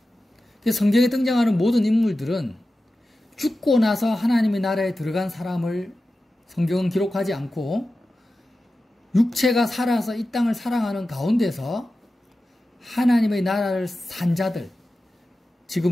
성경에 등장하는 모든 인물들은 죽고 나서 하나님의 나라에 들어간 사람을 성경은 기록하지 않고 육체가 살아서 이 땅을 살아가는 가운데서 하나님의 나라를 산 자들,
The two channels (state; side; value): normal; both; correlation 0.93